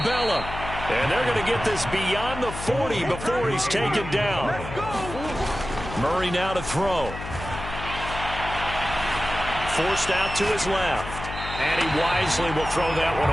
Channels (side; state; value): left; noise; hum, 9 dB below the sound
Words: And they're going to get this beyond the 40 before he's taken down. Murray now to throw. Forced out to his left. And he wisely will throw that one